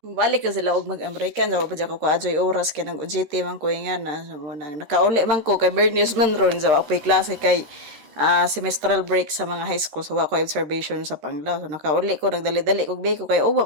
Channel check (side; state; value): left; late; 13 ms